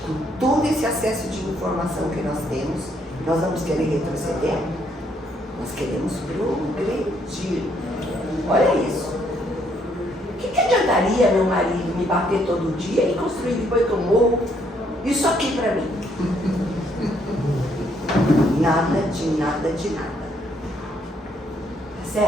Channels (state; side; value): normal; both; correlation 0.70